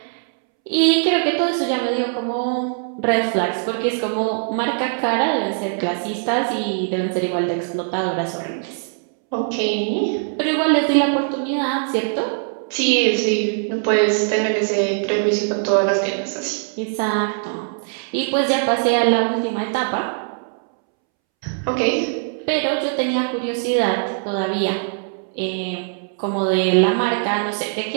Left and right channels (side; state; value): left; silent; 65 dB below the other